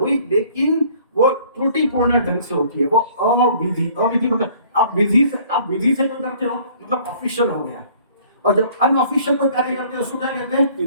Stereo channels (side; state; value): both; inverted; correlation -0.55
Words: लेकिन वो त्रुटिपूर्ण ढंग से होती है, वो अविधि। अविधि मतलब आप विधि से जो करते हो मतलब ऑफिशियल हो गया, और जब अनऑफिशियल कोई कार्य करते हो उसको क्या कहते हैं?